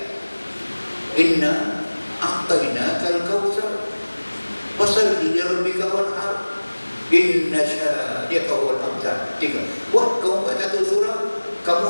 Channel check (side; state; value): both; inverted; correlation -1.00